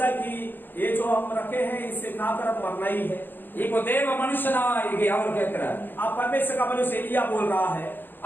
कि ये जो हम रखे हैं इससे खाकर अब मरना ही है। இப்போ தேவ மனுஷனா அவர் கேட்கிறார். अब परमेश्वर का मनुष्य एलिया बोल रहा है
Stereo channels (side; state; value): right; late; 0.095 ms